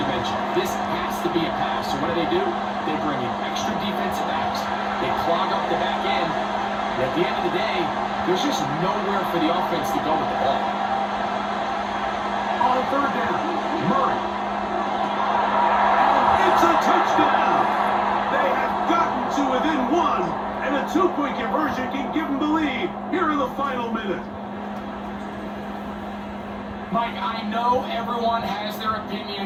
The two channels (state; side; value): identical; both; correlation 1.00